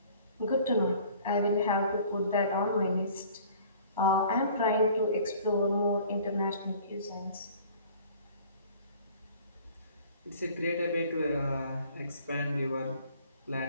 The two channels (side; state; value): both; inverted; correlation -0.51